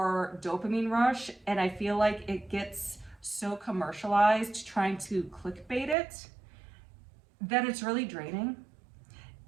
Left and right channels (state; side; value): drops out; left; at 6.0 s